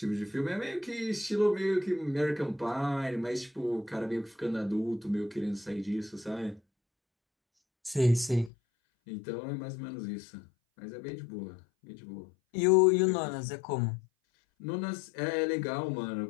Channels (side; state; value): right; drops out; at 8.5 s